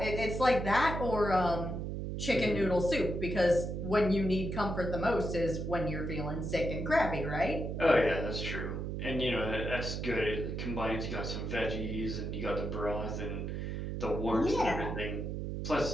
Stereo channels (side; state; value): right; noise; hum, 4 dB below the sound